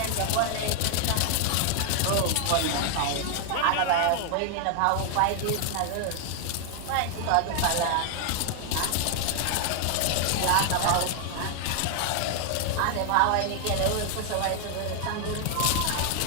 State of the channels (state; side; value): different; both; correlation 0.00